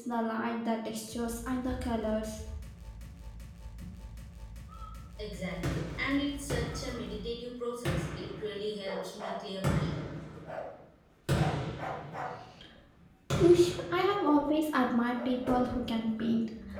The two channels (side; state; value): both; identical; correlation 1.00